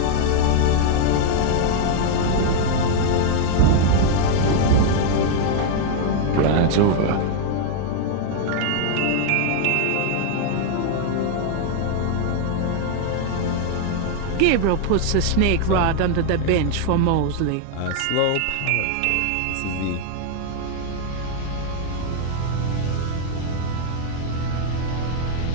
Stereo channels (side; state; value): both; different; correlation 0.00